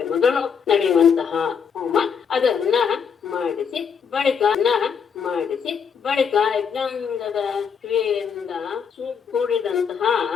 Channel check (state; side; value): quieter; right; 6.7 dB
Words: ಮೊದಲು ನಡೆಯುವಂತಹ ಹೋಮ ಅದನ್ನ ಮಾಡಿಸಿ ಬಳಿಕ ಯಜ್ಞಾಂಗದ ಕ್ರಿಯೆಯಿಂದ ಕೂಡಿದಂತಹ